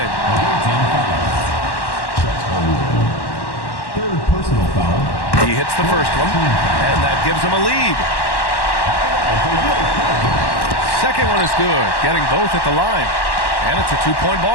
Third personal foul. He hits the first one, and that gives him a lead. Second one is good, getting both at the line. And it's a 2-point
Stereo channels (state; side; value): late; right; 1.1 ms